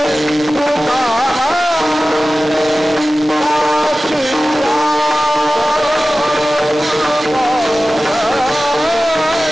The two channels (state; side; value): normal; both; correlation 0.96